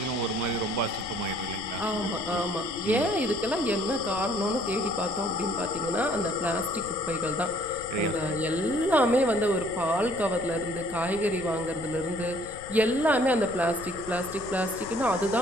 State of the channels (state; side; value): noise; left; rumble, 17 dB below the sound